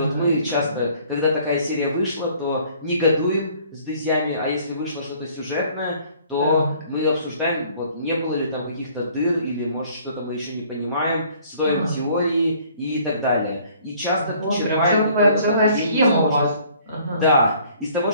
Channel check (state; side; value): inverted; both; correlation -0.57